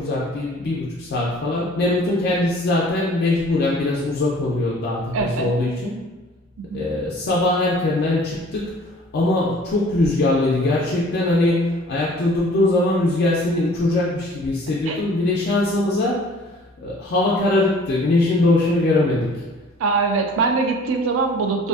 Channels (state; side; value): normal; both; correlation 0.51